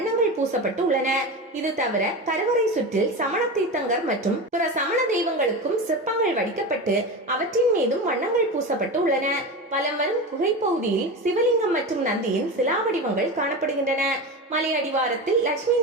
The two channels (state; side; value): normal; both; correlation 0.24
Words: பூசப்பட்டு உள்ளன. இது தவிர கருவறை சுற்றில் சமண தீர்த்தங்கர் மற்றும் பிற சமண தெய்வங்களுக்கும் சிற்பங்கள் வடிக்கப்பட்டு அவற்றின் மீதும் வண்ணங்கள் பூசப்பட்டு உள்ளன. வலம் வரும் குகை பகுதியில் சிவலிங்கம் மற்றும் நந்தியின் சிலா வடிவங்கள் காணப்படுகின்றன. மலை அடிவாரத்தில் லட்சுமி